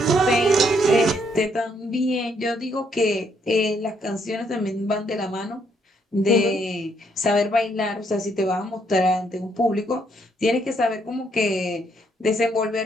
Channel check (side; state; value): both; normal; correlation 0.72